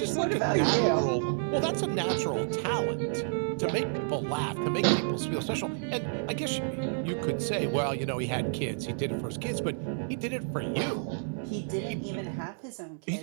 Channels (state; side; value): silent; left; digital silence